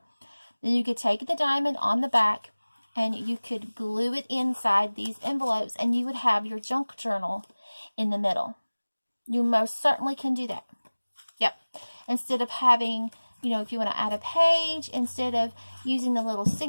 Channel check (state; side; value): inverted; both; correlation -1.00